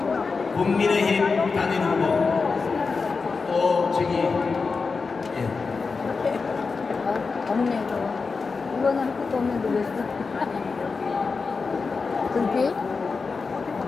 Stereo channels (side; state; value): right; quieter; 4.6 dB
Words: 국민의힘 단일 후보 또 저기 없네. 이거는 할 것도 없는데 왜 써? 금빛?